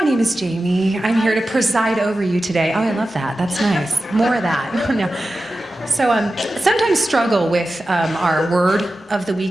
name is Jamie. I'm here to preside over you today. Oh, I love that. That's nice. More of that. No. So sometimes struggle with our word of the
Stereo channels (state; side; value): normal; both; correlation 0.93